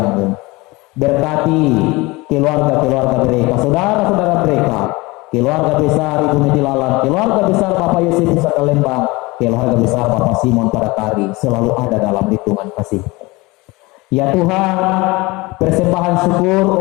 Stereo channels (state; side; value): quieter; right; 23.0 dB